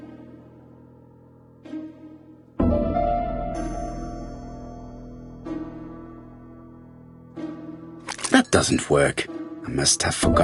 That doesn't work. I must have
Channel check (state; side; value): identical; both; correlation 1.00